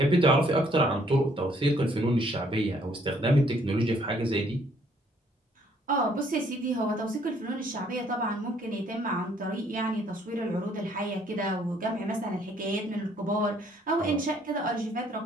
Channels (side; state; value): both; normal; correlation 0.64